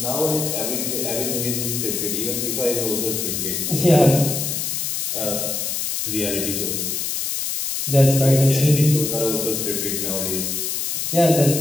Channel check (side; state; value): left; noise; hiss, 2 dB below the sound